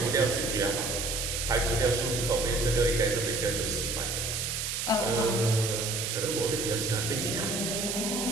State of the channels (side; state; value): right; noise; hiss, 2 dB below the sound